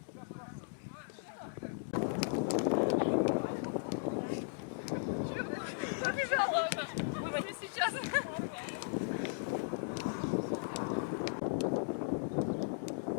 Побежала она. Выводи сейчас.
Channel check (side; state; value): right; silent; digital silence